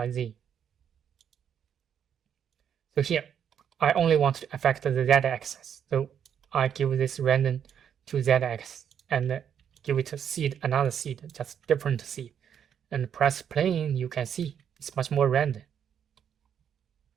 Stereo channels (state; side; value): quieter; left; 8.5 dB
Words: z. So here, I only want to affect the z-axis. So I give this random to z-axis and give it a seed, another seed, just different seed. And press play, you can see it's much more random.